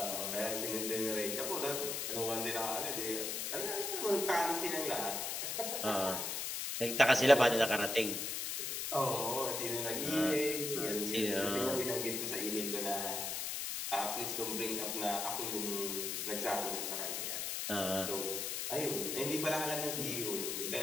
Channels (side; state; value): left; noise; hiss, 2 dB below the sound